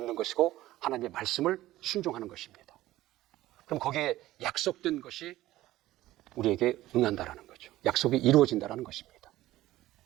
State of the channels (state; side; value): quieter; left; 15.8 dB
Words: 것이고 하나님의 말씀을 순종하는 것입니다. 그럼 거기에 약속된 것이 우리에게 응한다라는 거죠. 약속이 이루어진다라는 것입니다.